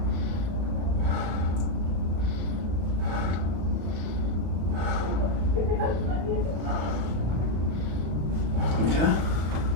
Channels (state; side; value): late; left; 35 ms